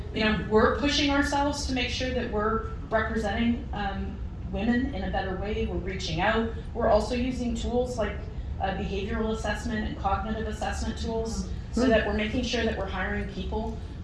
you know, we're pushing ourselves to make sure that we're representing women in a better way. We're reaching out. We're also using tools like behavioral assessment and cognitive assessment tools so that we're making sure that we're hiring people,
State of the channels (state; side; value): identical; both; correlation 1.00